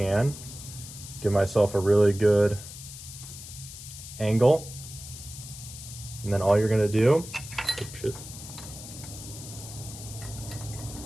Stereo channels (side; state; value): left; noise; hiss, 13 dB below the sound